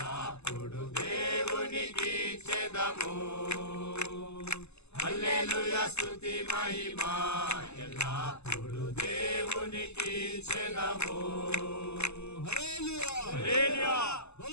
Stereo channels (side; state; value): right; late; 0.80 ms